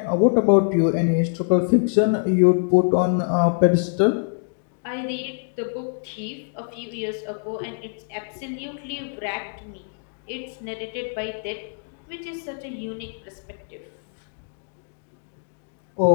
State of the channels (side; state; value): right; silent; digital silence